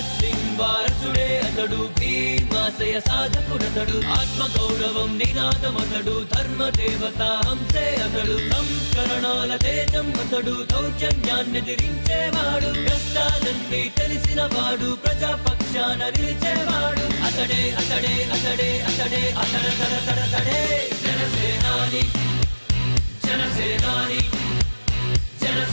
సింగ్ వారసుడే అతడు భీమాశయ సాధకుడతడు ఆత్మగౌరవం నినాదమతడు ధర్మ దేవత హంసే అతడు సంస్కరణాల తేజం అతడు దౌర్జన్యాన్ని ఎదిరించేవాడు కష్టాలన్నీ తెలిసిన వాడు ప్రజాపక్షాన నిలిచేవాడు అతడే అతడే అతడే అతడే అతడే జనసేనాని జనసేనాని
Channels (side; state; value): both; inverted; correlation -1.00